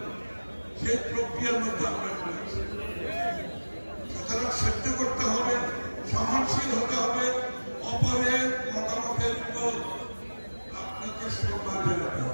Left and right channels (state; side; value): inverted; both; correlation -1.00